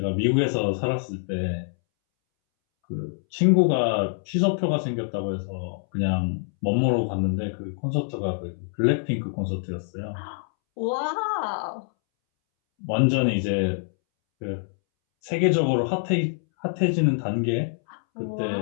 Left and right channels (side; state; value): right; silent; 62 dB below the other